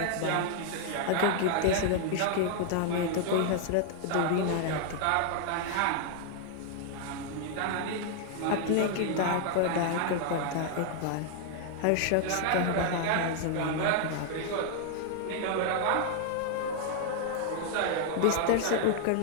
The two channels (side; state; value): both; different; correlation 0.00